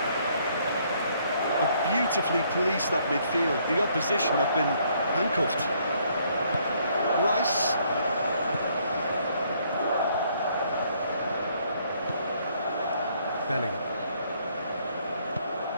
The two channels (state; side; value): inverted; both; correlation -0.67